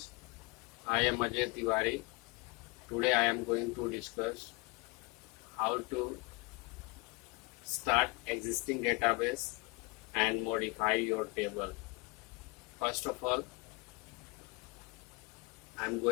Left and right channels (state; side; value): quieter; right; 26.6 dB